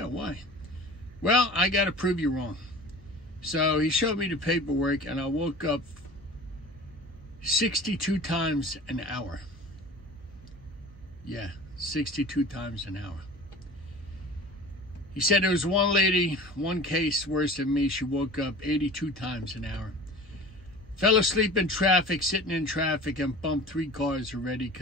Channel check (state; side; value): noise; right; hum, 22 dB below the sound